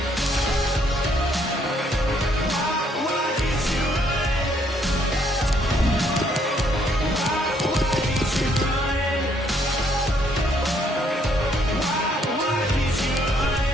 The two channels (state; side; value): normal; both; correlation 0.68